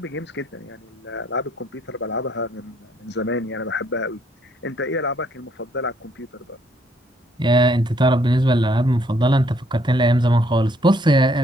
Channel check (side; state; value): both; normal; correlation 0.68